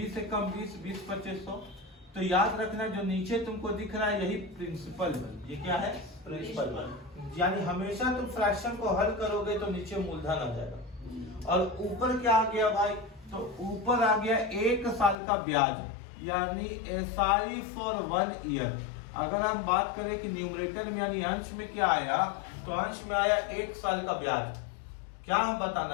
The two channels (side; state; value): right; drops out; at 15.2 s